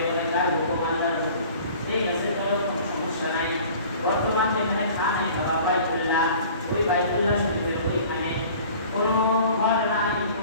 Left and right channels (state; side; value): inverted; both; correlation -0.47